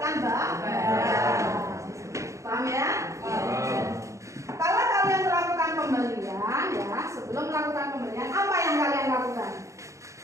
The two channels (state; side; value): late; left; 0.15 ms